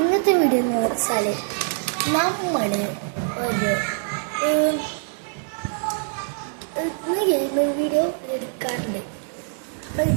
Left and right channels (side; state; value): left; silent; digital silence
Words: video എന്ന് വെച്ചാൽ നമ്മൾ ഒരു ഗെയിമിംഗ് വീഡിയോ എടുക്കാറുണ്ട്. അപ്പം